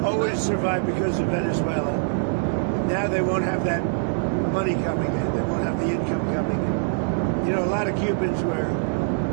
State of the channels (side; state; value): left; silent; 63 dB below the other